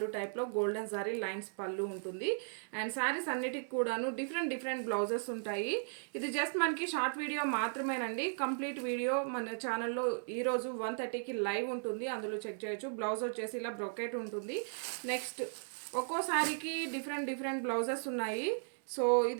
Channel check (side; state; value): left; silent; digital silence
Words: టైప్లో గోల్డెన్ జరీ లైన్స్ పళ్ళు ఉంటుంది. అండ్ శారీస్ అన్నిటికి కూడాను డిఫరెంట్ బ్లౌజెస్ ఉంటాయి. ఇది జస్ట్ మనకి షార్ట్ వీడియో మాత్రమేనండి. కంప్లీట్ వీడియో మన ఛానల్లో ఈరోజు 1:30కి లైవ్ ఉంటుంది, అందులో చెక్ చేయొచ్చు. బ్లౌజ్ వచ్చేసి ఇలా బ్రొకెట్ ఉంటుంది. నెక్స్ట్ ఒక్కో సారీకి డిఫరెంట్ బ్లౌజెస్ ఉన్నాయి. సో